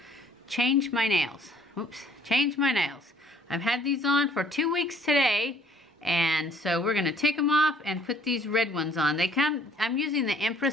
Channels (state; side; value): normal; both; correlation 0.60